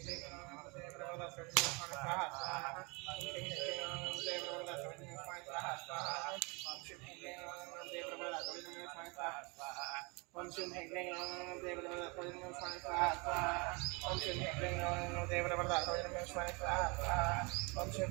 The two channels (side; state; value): left; quieter; 29.3 dB